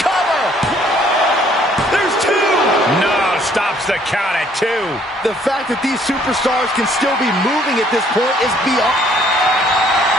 Cover! There's 2! No, stops the count at 2. The fact that these superstars can still be moving at this point is beyond.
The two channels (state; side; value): normal; both; correlation 0.62